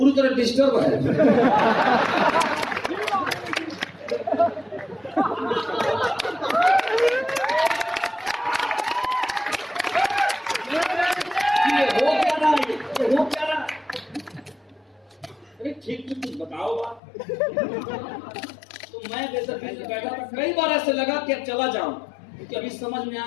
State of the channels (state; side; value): drops out; right; at 17.0 s